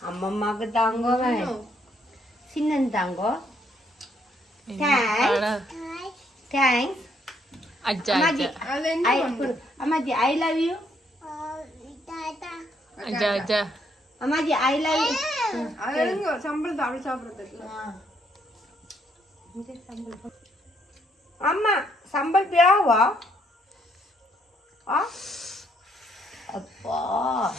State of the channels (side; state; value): both; normal; correlation 0.71